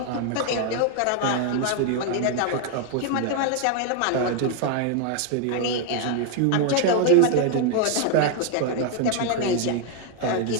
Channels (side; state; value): both; different; correlation 0.00